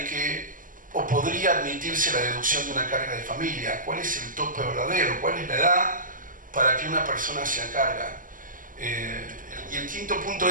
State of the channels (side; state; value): left; late; 0.39 ms